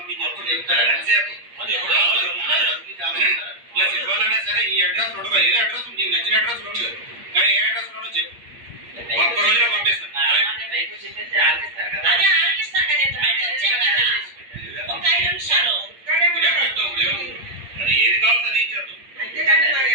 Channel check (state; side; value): late; left; 8.5 ms